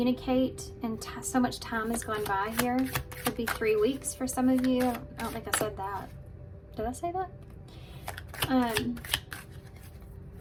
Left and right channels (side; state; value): both; identical; correlation 1.00